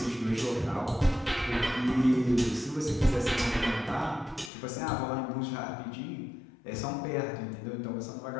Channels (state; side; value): drops out; right; at 4.5 s